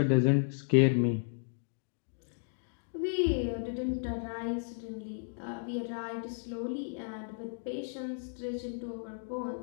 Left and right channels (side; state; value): right; silent; digital silence